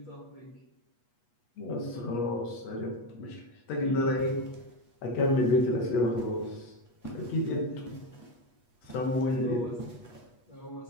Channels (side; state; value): right; late; 8.3 ms